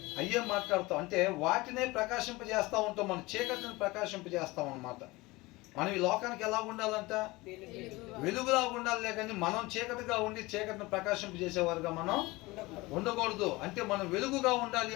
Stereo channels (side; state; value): right; quieter; 21.8 dB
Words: అయ్యే మాట్లాడతాం. అంటే వాటినే ప్రకాశింపజేస్తూ ఉంటాం, మన చీకటిని ప్రకాశింపజేస్తాం అనమాట. మనం ఈ లోకానికి ఎలా ఉండాలంట? వెలుగులా ఉండాలి, కానీ మనం చీకటిగా ఉండి చీకటిని ప్రకాశింపజేసేవారుగా మనం ఉండకూడదు. అంటే మనం వెలుగుగా ఉండాలి